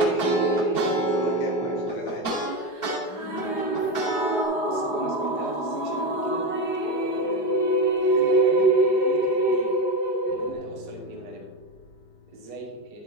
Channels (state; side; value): late; right; 4.8 ms